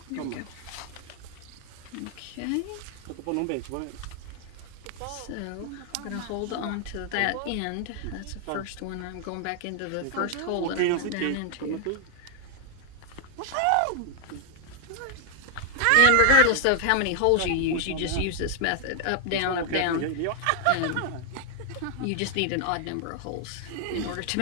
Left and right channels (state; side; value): different; both; correlation 0.00